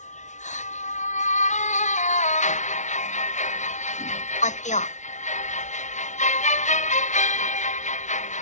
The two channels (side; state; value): right; late; 0.35 ms